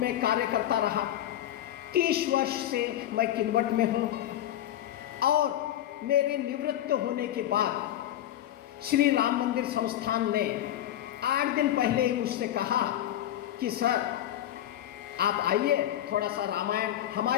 कार्य करता रहा। 30 वर्ष से मैं किन्वट में हूँ और मेरे निवृत्त होने के बाद श्री राम मंदिर संस्थान ने 8 दिन पहले ही मुझसे कहा कि सर आप आइए, थोड़ा सा रामायण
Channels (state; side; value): quieter; right; 12.3 dB